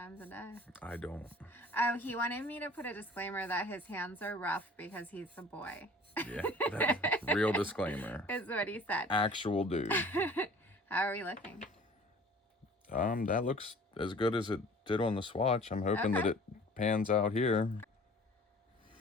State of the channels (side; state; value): both; normal; correlation 0.48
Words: a day. I don't. Oh, he wanted me to put a disclaimer that his hands are rough because he's a boy. Yeah, that's real disclaimer. Is what he said. Actual dude. How are we looking? That looks as good as it did on the swatch. I'm hoping that it pans out here.